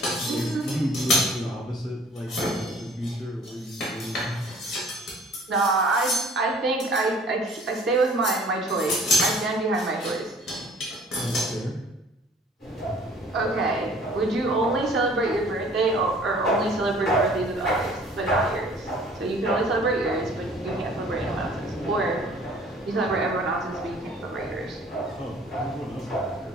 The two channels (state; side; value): normal; both; correlation 0.53